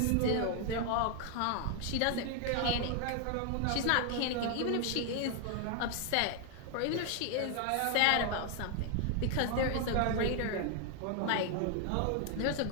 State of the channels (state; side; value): different; both; correlation 0.00